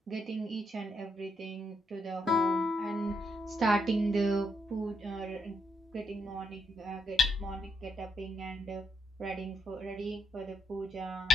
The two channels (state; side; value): normal; both; correlation 0.78